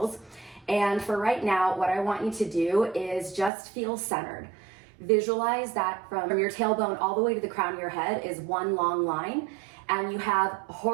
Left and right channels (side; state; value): left; drops out; at 3.5 s